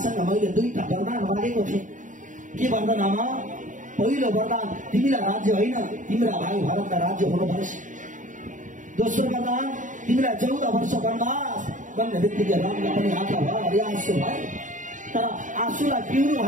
मैले दुईटा वरदान मागेको थिएँ। के वरदान आमा? पहिलो वरदान तिमीलाई राज्य होइन, तिम्रा भाइ भरतलाई राज्य हुनुपर्छ। दोस्रो वरदान तिमीलाई 14 वर्ष वनवास भन्ने बित्तिकै रामलाई पनि आँखा भरि आँसु भयो। तर आँसुलाई पिउनु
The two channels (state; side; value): late; left; 0.37 ms